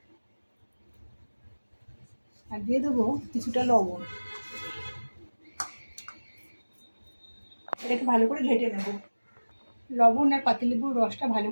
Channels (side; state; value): both; inverted; correlation -1.00